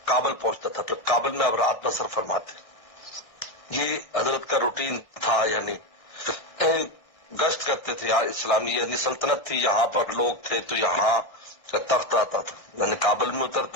کابل پہنچتا تھا، پھر کابل میں اب رات بسر فرماتے۔ یہ حضرت کا روٹین تھا، یعنی گشت کرتے تھے اسلامی، یعنی سلطنت تھی، یہاں پر لوگ تھے تو یہاں سے تخت آتا تھا، یعنی کابل میں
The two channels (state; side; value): late; right; 1.6 ms